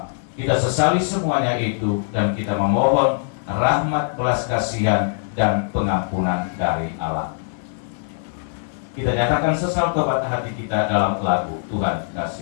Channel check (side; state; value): right; silent; 60 dB below the other